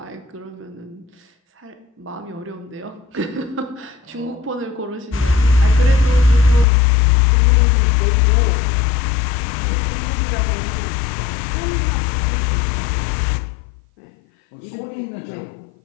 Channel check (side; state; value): right; drops out; at 6.7 s